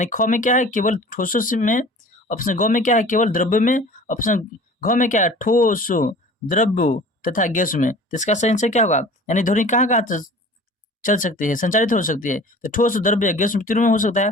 ख में क्या है? केवल ठोसों से में। ऑप्शन ग में क्या है? केवल द्रव्य में। ऑप्शन घ में क्या है? ठोसों, द्रव्यों तथा गैस में। तो इसका सही आंसर क्या होगा? यानी ध्वनि कहाँ कहाँ चल सकती है, संचारित हो सकती है? तो ठोस, द्रव्य, गैस तीनों में हो सकता है।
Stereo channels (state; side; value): normal; both; correlation 0.44